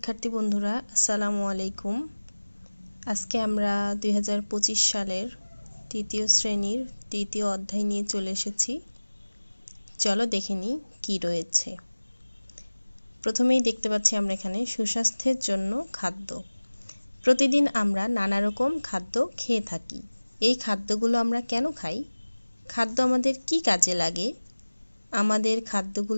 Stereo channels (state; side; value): inverted; both; correlation -1.00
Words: বন্ধুরা, আসসালামু আলাইকুম। আজকে আমরা 2025 সালের তৃতীয় শ্রেণীর তৃতীয় অধ্যায় নিয়ে চলে এসেছি। চলো দেখে নিই কী রয়েছে। প্রথমেই দেখতে পাচ্ছি আমরা এখানে সুস্বাস্থ্যের জন্য খাদ্য। প্রতিদিন আমরা নানা রকম খাদ্য খেয়ে থাকি। এই খাদ্যগুলো আমরা কেন খাই? খাদ্য আমাদের কি কাজে লাগে? আমাদের